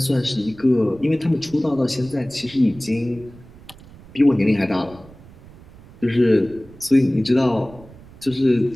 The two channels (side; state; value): right; noise; rumble, 21 dB below the sound